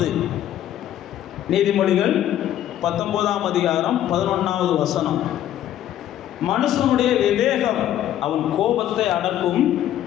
நீதிமொழிகள் 19ஆம் அதிகாரம் 11வது வசனம். மனுஷனுடைய விவேகம் அவன் கோபத்தை அடக்கும்,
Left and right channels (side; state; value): right; quieter; 11.8 dB